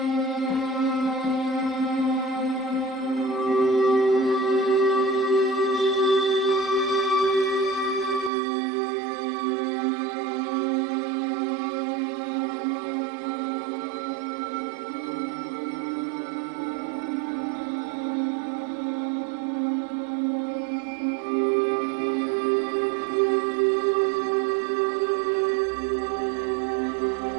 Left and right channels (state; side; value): drops out; left; at 8.3 s